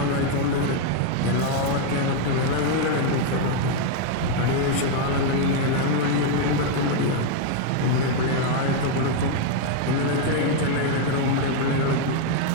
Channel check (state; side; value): different; both; correlation 0.00